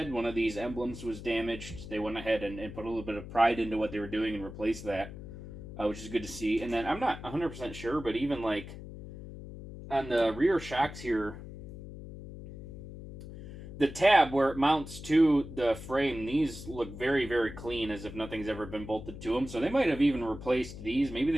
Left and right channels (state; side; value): noise; left; hum, 12 dB below the sound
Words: one of these emblems was damaged. They went ahead and put a little bit of pride into what they were doing and replaced that, which is good to see. And then I'm not 100% sure, but even like on the rear shocks here, the tab where it mounts to the frame, these look very, very clean, as if nothing's ever been bolted to them. So they might have even replaced these. Maybe